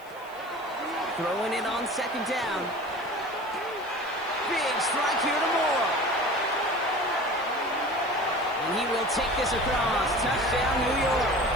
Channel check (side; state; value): right; noise; hiss, 25 dB below the sound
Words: Throwing it on 2nd down. Big strike here to Moore. And he will take this across. Touchdown, New York.